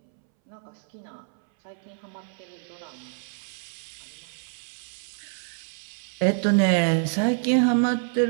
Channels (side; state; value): left; silent; 60 dB below the other